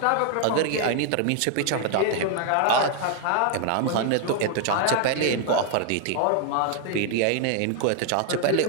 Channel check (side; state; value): both; different; correlation 0.00